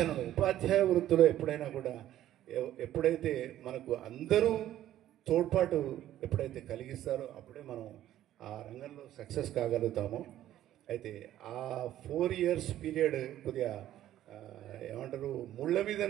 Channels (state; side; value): quieter; left; 12.7 dB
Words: ఉపాధ్యాయ వృత్తిలో ఎప్పుడైనా కూడా ఎప్పుడైతే మనకు అందరూ తోడ్పాటు ఎప్పుడైతే కలిగిస్తారో అప్పుడే మనం ఆ రంగంలో సక్సెస్ కాగలుగుతాము. అయితే ఆ 4 ఇయర్స్ పీరియడ్ కొద్దిగా ఏమంటారు ముళ్ళ మీద